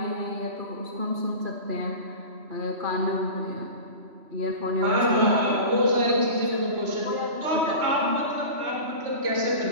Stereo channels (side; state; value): left; late; 3.0 ms